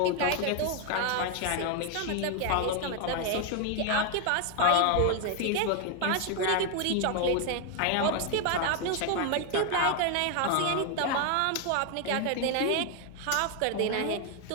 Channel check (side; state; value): both; different; correlation 0.01